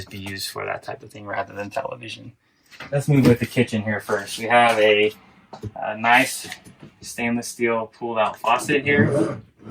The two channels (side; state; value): both; identical; correlation 1.00